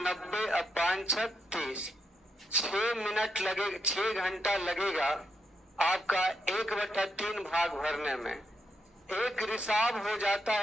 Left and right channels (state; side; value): normal; both; correlation 0.81